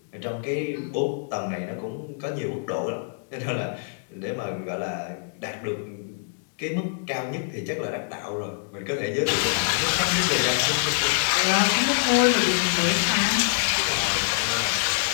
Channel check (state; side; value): silent; right; digital silence